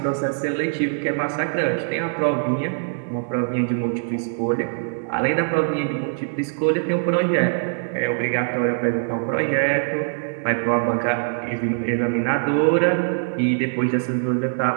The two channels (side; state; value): left; silent; digital silence